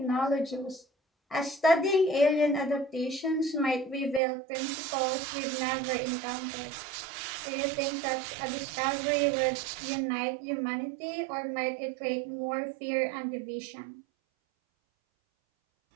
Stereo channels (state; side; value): drops out; left; at 4.2 s